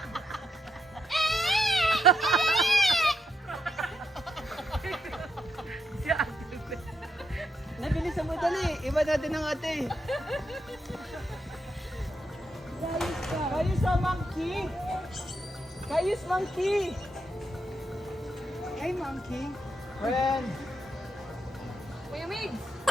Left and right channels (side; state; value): both; normal; correlation 0.81